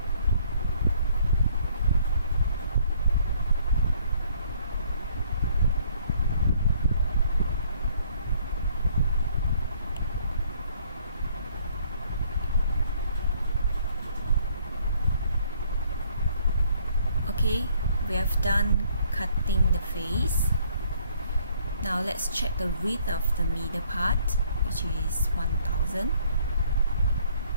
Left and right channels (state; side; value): inverted; both; correlation -0.63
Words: Okay, we have done cutting the face. Now let's check the width of the middle part, which is 1000.